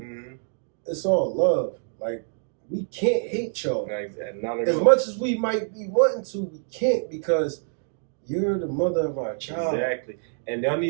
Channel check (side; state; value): left; silent; digital silence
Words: It's all love. Like, we can't hate y'all. Not at As all. much as we might be wanting to, we can't because you're the mother of our child. Exactly. And y'all